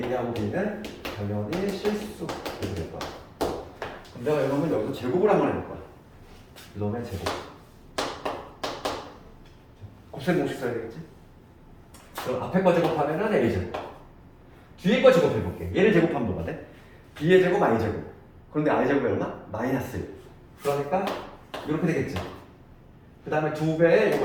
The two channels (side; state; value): both; identical; correlation 1.00